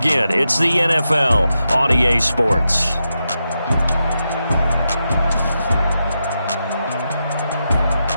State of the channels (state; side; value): inverted; both; correlation -0.87